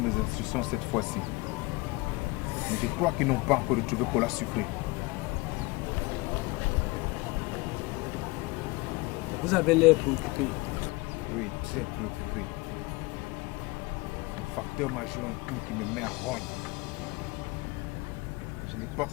instructions cette fois-ci. Mais je crois qu'ils n'ont pas encore retrouvé cola sucré. Vous avez l'air préoccupé. Oui, très préoccupé. Le facteur m'a joué un tour qui me met en rogne. Je n'ai pas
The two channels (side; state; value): right; quieter; 23.5 dB